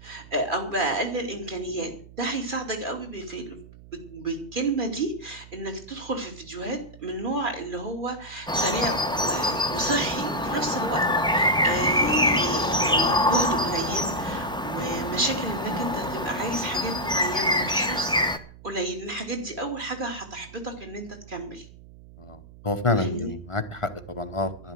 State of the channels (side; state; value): right; noise; hum, 20 dB below the sound